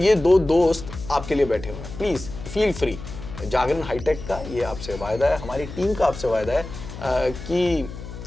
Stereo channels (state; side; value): noise; left; hum, 11 dB below the sound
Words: दो दोस्त आपके लिए बैठे हुए हैं। Please feel free. Jagran hi tech का ये आपसे वायदा है, हमारी टीम का आपसे वायदा है कि